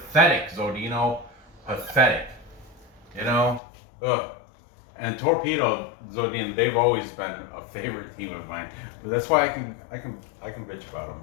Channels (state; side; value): drops out; right; at 3.6 s